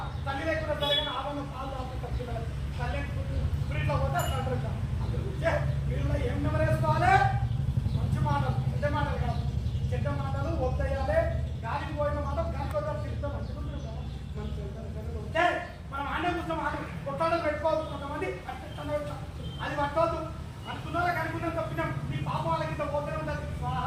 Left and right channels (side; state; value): both; identical; correlation 1.00